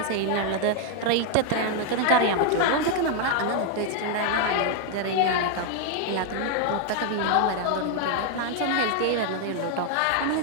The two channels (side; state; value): both; different; correlation 0.00